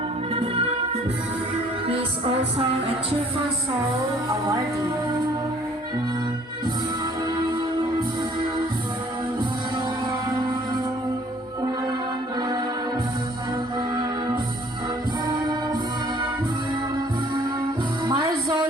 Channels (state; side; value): normal; both; correlation 0.57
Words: He is also a Cheerful Soul awardee.